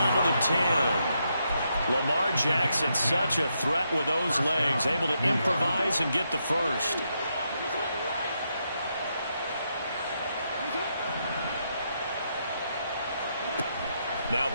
to the 10. Lamar Jackson, such a threat with those legs, able to improvise and get the first. Now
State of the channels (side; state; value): both; inverted; correlation -0.80